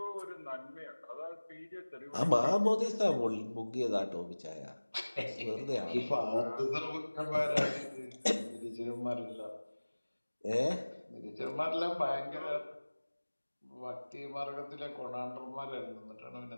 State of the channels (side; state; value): both; inverted; correlation -1.00